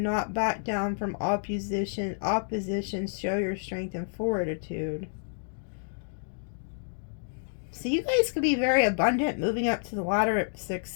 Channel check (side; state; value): right; silent; digital silence